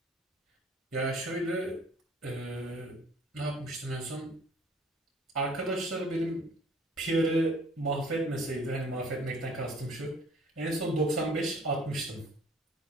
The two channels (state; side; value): normal; both; correlation 0.53